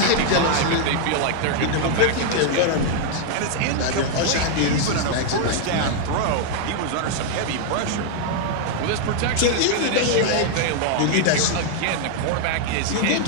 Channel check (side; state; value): both; different; correlation 0.00